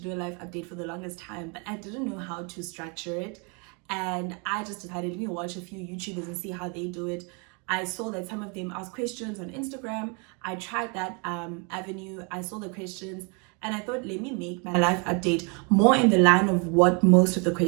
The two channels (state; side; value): quieter; left; 34.0 dB